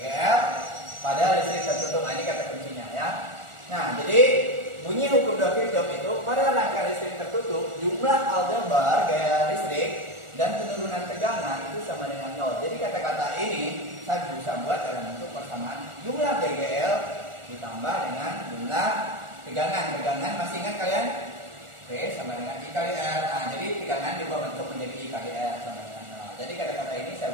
pada listrik tertutup. Ini kata kuncinya ya. Nah, jadi bunyi hukum 2 Kirchhoff itu pada rangkaian listrik tertutup, jumlah aljabar gaya listrik dan penurunan tegangan itu sama dengan 0. Jadi kata-kata ini saya bisa buat dalam bentuk persamaan jumlah GGL ditambah dengan jumlah tegangan. Tegangan masih ingat kalian? P sama dengan I kali R. Nah, jadi tegangan diubah bentuk menjadi I kali R sama dengan 0. Jadi kata-kata ini saya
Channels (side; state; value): left; late; 1.4 ms